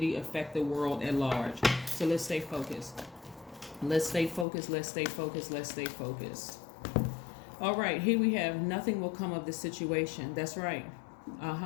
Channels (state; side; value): drops out; right; at 4.5 s